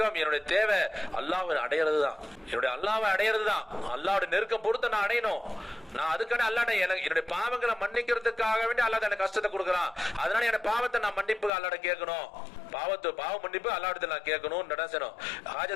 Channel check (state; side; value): drops out; right; at 11.5 s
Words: என்னுடைய தேவை அல்லாஹ்வை அடையிறது தான். என்னுடைய அல்லாஹ்வை அடையிறது தான். அல்லாஹ்வுடைய நெருக்கம் பொறுத்து நான் அடையணும். நான் அதுக்கான அல்லாஹ்ட்ட என்னுடைய பாவங்களை மன்னிக்கிறதுக்காக வேண்டி அல்லாஹ் எனக்கு கஷ்டத்தை கொடுக்குறான். அதனால என் பாவத்தை நான் மன்னிப்பு அல்லாஹ்ட்ட கேட்கணும். பாவ மன்னிப்பு அல்லாஹ்விடத்தில் நான் கேட்கணும்.